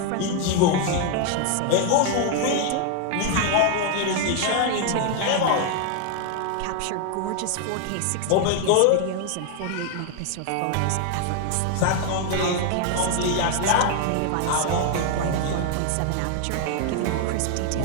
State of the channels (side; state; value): both; different; correlation 0.00